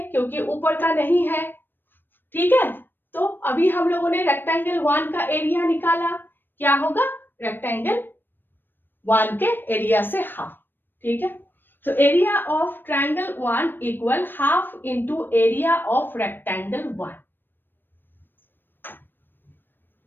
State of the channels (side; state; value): right; late; 0.095 ms